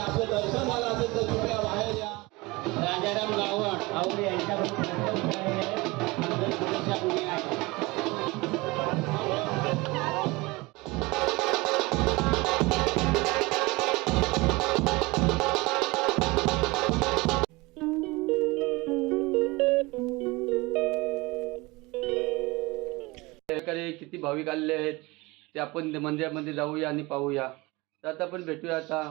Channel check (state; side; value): quieter; left; 23.3 dB